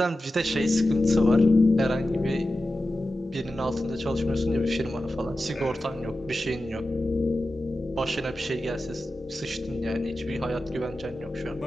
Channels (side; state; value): both; normal; correlation 0.93